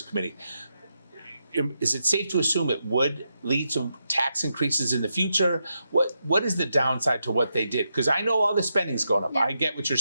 Committee, is it safe to assume it would lead to tax increases in the future? What is the downside to what they did? Because I know all the spending's going up. I get what you're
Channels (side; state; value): both; inverted; correlation -0.84